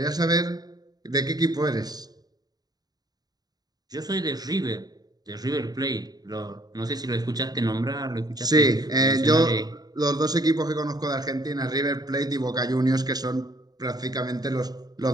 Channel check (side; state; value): left; late; 0.19 ms